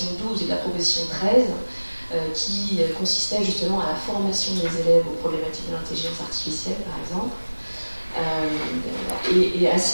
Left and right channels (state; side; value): inverted; both; correlation -1.00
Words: 12 et de la proposition 13 qui consistait justement à la formation des élèves aux problématiques de l'intelligence artificielle par exemple. Et à